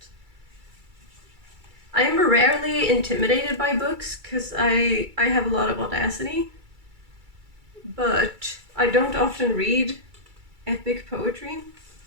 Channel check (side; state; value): left; late; 2.3 ms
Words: I am rarely intimidated by books because I have a lot of audacity, but I don't often read epic poetry,